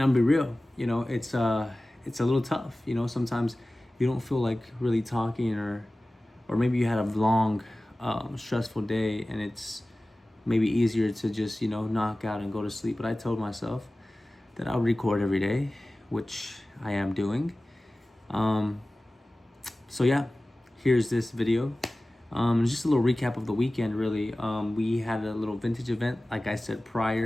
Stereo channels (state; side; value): normal; both; correlation 0.97